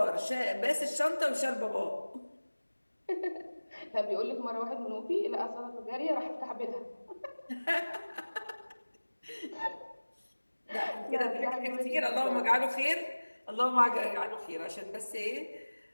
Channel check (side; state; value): both; inverted; correlation -1.00